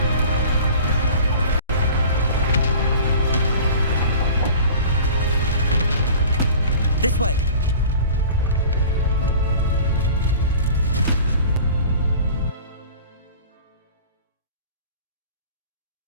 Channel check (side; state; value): both; inverted; correlation -0.42